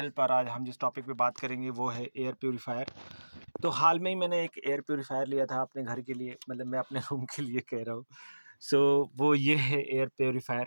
और आज हम जिस टॉपिक पे बात करेंगे वो है एयर प्योरीफायर। तो हाल में ही मैंने एक एयर प्योरीफायर लिया था अपने घर के लिए, मतलब मैं अपने रूम के लिए कह रहा हूँ। सो वो ये है एयर प्योरीफायर।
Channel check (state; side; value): inverted; both; correlation -1.00